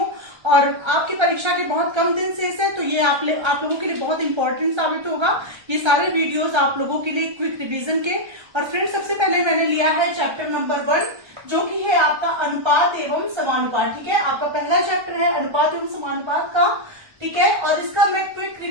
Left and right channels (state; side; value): late; left; 1.3 ms